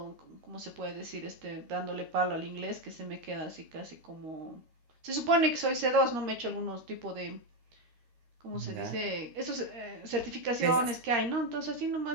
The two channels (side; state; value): left; late; 13 ms